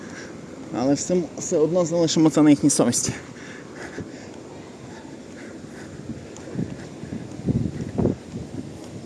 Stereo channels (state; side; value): identical; both; correlation 1.00